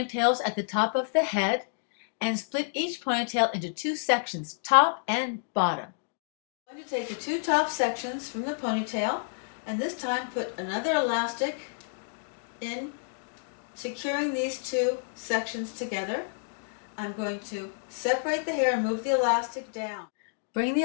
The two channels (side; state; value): right; silent; digital silence